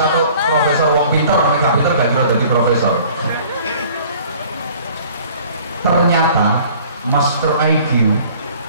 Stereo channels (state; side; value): inverted; both; correlation -0.51